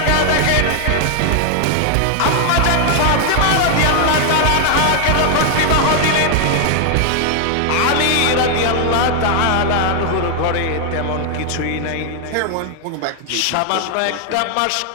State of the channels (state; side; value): different; both; correlation 0.00